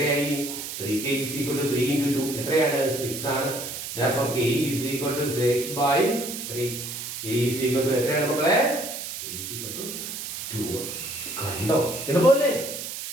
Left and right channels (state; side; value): noise; right; hiss, 7 dB below the sound